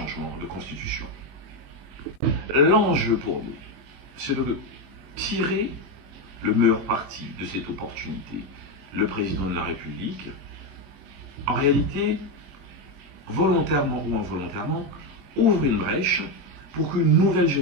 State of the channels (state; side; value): late; left; 21 ms